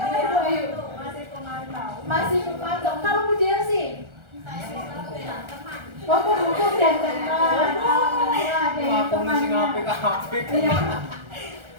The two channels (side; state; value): left; late; 1.4 ms